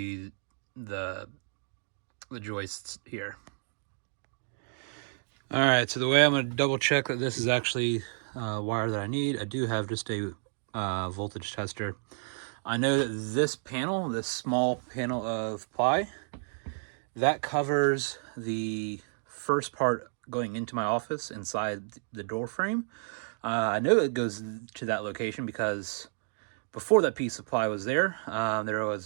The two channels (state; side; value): silent; left; digital silence